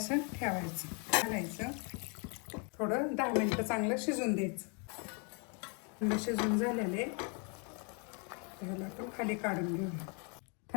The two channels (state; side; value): quieter; right; 36.4 dB